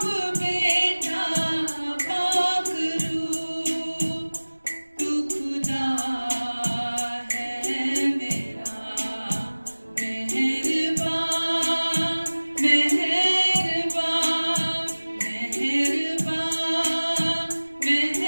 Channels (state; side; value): inverted; both; correlation -1.00